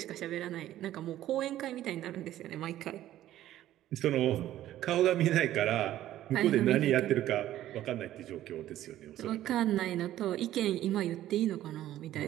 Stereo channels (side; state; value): left; quieter; 13.3 dB